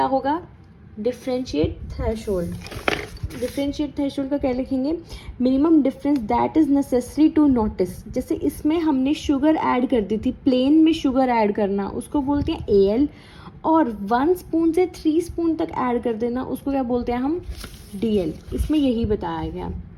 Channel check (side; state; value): both; identical; correlation 1.00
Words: होगा, डिफरेंशिएट थ्रेशोल्ड। डिफरेंशिएट थ्रेशोल्ड का क्या लिखेंगे, minimum difference that is necessary to notice. जैसे इसमें हमने शुगर ऐड कर दी थी, प्लेन में शुगर ऐड करना उसको बोलते हैं AL, और 1 स्पून से 3 स्पून तक ऐड कर देना उसको क्या बोलते हैं हम, DL। इसमें यही बताया गया।